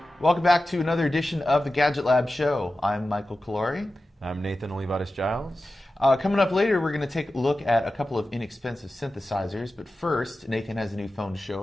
Welcome back to another edition of the Gadget Lab Show. I'm Michael Calori. I'm Nathan Olivares-Giles. Coming up later, we're going to take a look at a couple of inexpensive synthesizers. But first, Nathan has a new phone to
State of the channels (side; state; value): both; normal; correlation 0.94